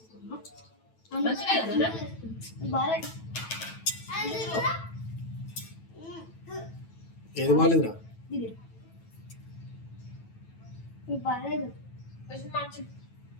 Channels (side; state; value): right; late; 9.1 ms